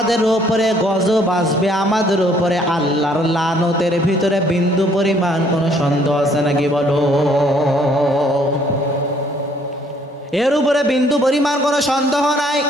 উপরে গজব আসবে, আমাদের উপরে আল্লাহর লানতের ভিতরে বিন্দু পরিমাণ কোনো সন্দেহ আছে নাকি বলো? এর উপরে বিন্দু পরিমাণ কোনো সন্দেহ নাই।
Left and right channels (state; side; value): normal; both; correlation 0.63